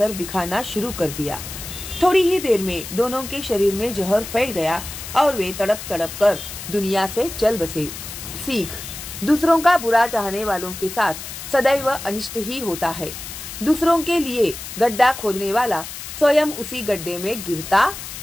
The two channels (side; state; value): left; noise; hiss, 10 dB below the sound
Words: दिखाना शुरू कर दिया। थोड़ी ही देर में दोनों के शरीर में जहर फैल गया और वे तड़प तड़प कर दुनिया से चल बसे। सीख: दूसरों का बुरा चाहने वालों के साथ सदैव अनिष्ट ही होता है। दूसरों के लिए गड्ढा खोदने वाला स्वयं उसी गड्ढे में गिरता